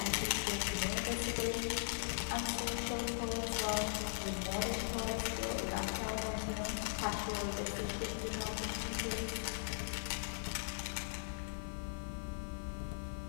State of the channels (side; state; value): right; silent; digital silence